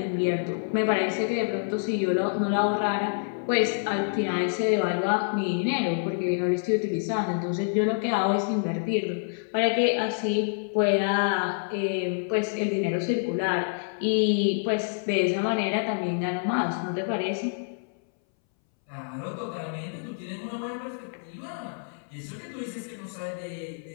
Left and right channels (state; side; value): silent; right; 60 dB below the other